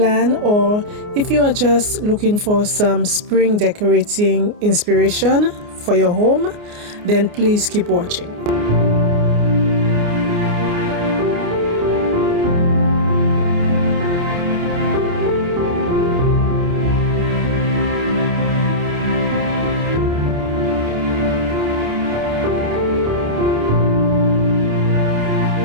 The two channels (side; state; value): left; late; 29 ms